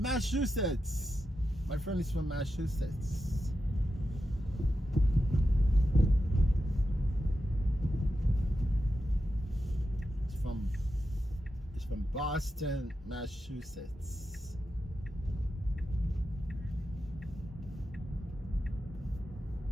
My friend is from Massachusetts. It's from Boston, Massachusetts.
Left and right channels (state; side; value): normal; both; correlation 0.89